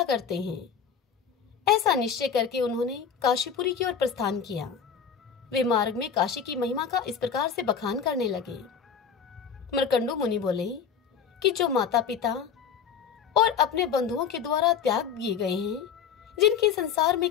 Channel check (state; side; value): quieter; right; 7.2 dB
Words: करते हैं। ऐसा निश्चय करके उन्होंने काशीपुरी की ओर प्रस्थान किया। वे मार्ग में काशी की महिमा का इस प्रकार से बखान करने लगे। मृकंडू मुनि बोले कि जो माता पिता और अपने बंधुओं के द्वारा त्याग दिए गए हैं, जिनके संसार में